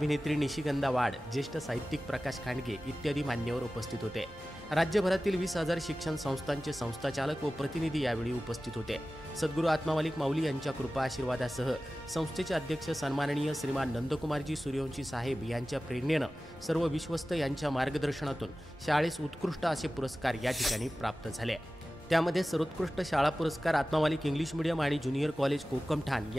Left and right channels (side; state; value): both; normal; correlation 0.96